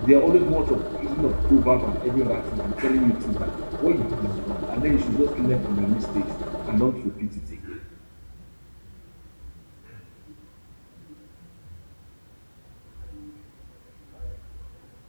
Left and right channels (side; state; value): both; inverted; correlation -1.00